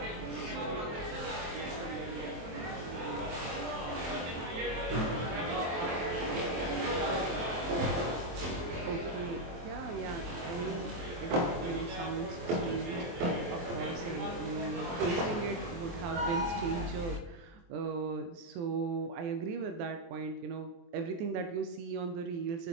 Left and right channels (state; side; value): late; left; 23 ms